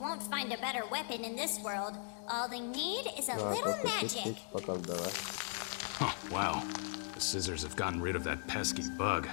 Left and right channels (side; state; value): right; silent; 52 dB below the other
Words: find a better weapon in this world. All they need is a little magic. Huh, wow. The scissors have gotten rid of that pesky bug.